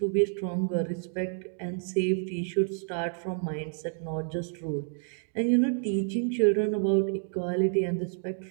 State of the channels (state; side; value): silent; left; 58 dB below the other